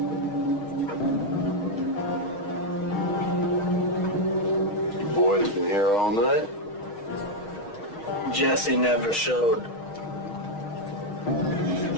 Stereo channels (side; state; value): right; late; 6.4 ms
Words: Boys been here all night? Jesse never showed.